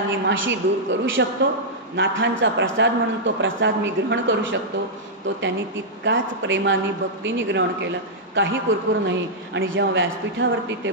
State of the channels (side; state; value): both; normal; correlation -0.08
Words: माशी दूर करू शकतो. नाथांचा प्रसाद म्हणून तो प्रसाद मी ग्रहण करू शकतो. तो त्यांनी तितकाच प्रेमाने भक्तीने ग्रहण केला, काही कुरकुर नाही. आणि जेव्हा व्यासपीठावरती ते